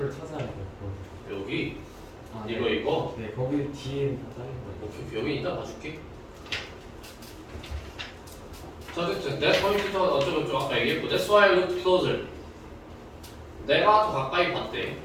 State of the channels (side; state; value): both; identical; correlation 1.00